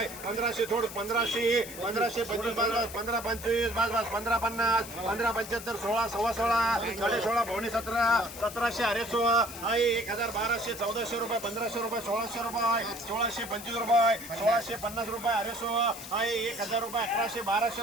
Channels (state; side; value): noise; left; hiss, 13 dB below the sound